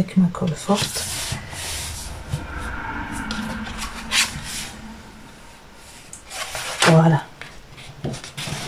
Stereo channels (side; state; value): both; identical; correlation 1.00